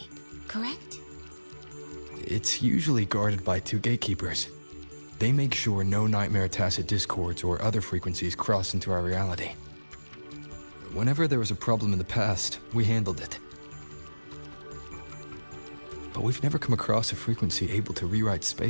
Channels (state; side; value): inverted; both; correlation -1.00